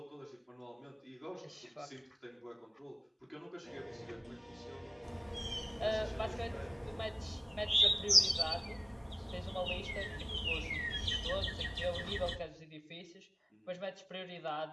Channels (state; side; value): identical; both; correlation 1.00